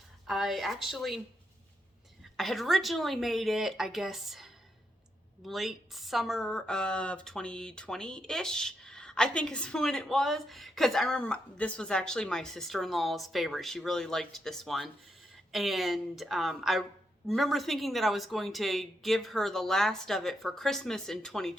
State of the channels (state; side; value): normal; both; correlation 0.81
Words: I had originally made it, I guess, late summer of 2020-ish, I think is when it was. Because I remember this was actually my sister-in-law's favorite. She really liked this one. And I remember thinking that I was going to give her the last of it for Christmas in